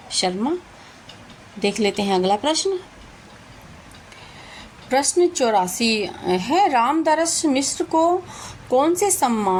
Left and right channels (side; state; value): both; identical; correlation 1.00